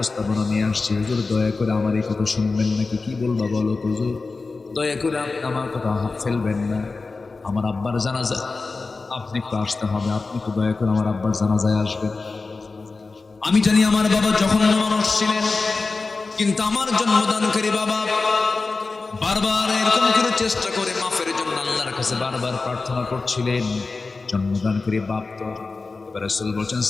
নিয়ে আসছি। হুজুর দয়া করে আমার এই কথা শুনবেন নাকি? কি বলবা বলো হুজুর, দয়া করে আপনি আমার কথা ফেলবেন না। আমার আব্বার জানাজা আপনি একটু আসতে হবে, আপনি একটু দয়া করে আমার আব্বার জানাজায় আসবেন। আমি জানি আমার বাবা জঘন্য মানুষ ছিলেন, কিন্তু আমার জন্মদানকারী বাবা বারবার এরকম করে চেষ্টা করে মাফের জন্য আল্লাহর কাছে বারবার প্রার্থনা করছিলেন। জন্মদানকারী বাপ তো। এবার রাসূল বলছেন,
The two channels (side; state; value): right; quieter; 3.9 dB